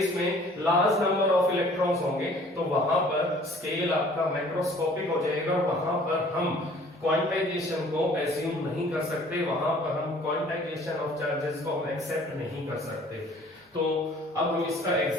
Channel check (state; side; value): normal; both; correlation 0.53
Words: में लार्ज नंबर ऑफ इलेक्ट्रॉन्स होंगे, तो वहां पर स्केल आपका मैक्रोस्कोपिक हो जाएगा. वहां पर हम क्वांटाइजेशन को एज्यूम नहीं कर सकते, वहां पर हम क्वांटाइजेशन ऑफ चार्जेस को हम एक्सेप्ट नहीं कर सकते. तो अब हम इसका